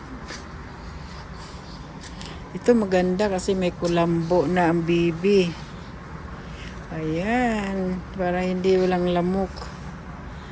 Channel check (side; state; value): both; identical; correlation 1.00